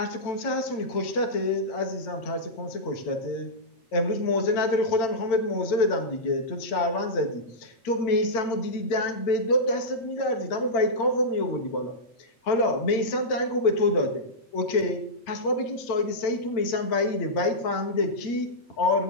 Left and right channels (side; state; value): right; late; 8.9 ms